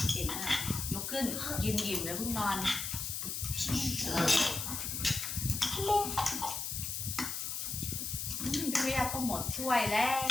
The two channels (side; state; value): left; noise; hiss, 3 dB below the sound